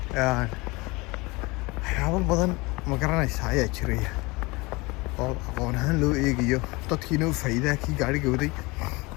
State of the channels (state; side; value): quieter; right; 24.3 dB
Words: waxyaabo badan ma garanaysaa ayaa jiraya oo aqoon ahaan loo eegayo dadkiina u faa'iidaha kii gaadhiga waday